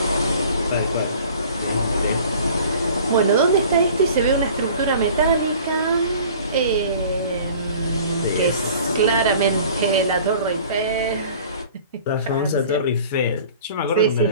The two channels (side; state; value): both; inverted; correlation -0.47